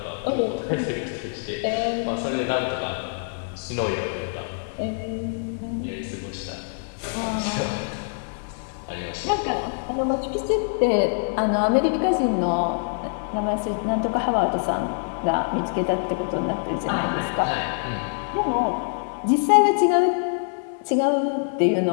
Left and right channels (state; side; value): silent; right; 62 dB below the other